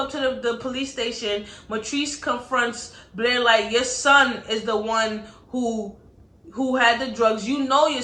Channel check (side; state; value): both; identical; correlation 1.00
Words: to the police station. Matrice confronts Blair like, your son is the one who had the drugs. You know your